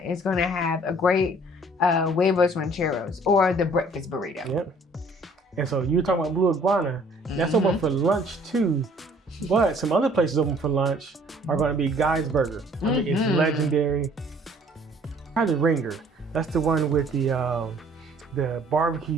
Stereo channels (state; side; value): normal; both; correlation 0.57